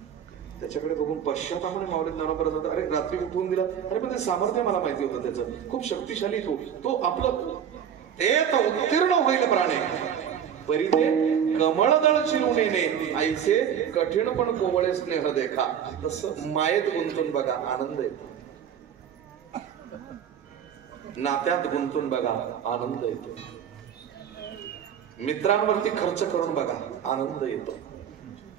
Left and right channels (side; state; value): left; quieter; 8.6 dB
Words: त्याच्याकडे बघून पश्चातापाने माऊली ज्ञानोबा जातात, अरे रात्री उठवून दिला, अरे पण ते सामर्थ्य मला माहिती होतं त्याचं, खूप शक्तिशाली तो आपलं ते तर उत्तीर्ण होईल प्राणे, परी ते कमळदळ चिरून येणे, आईचे कठीण पण कोवळे स्नेह देखा. तसं मायेत गुंतून बघा, आनंद येतो. नात्यात गुंतून बघा, आनंद येतो. मित्रांवरती खर्च करून बघा, आनंद येतो.